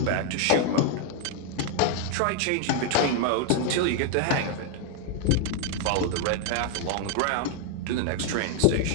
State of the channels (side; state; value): both; different; correlation 0.00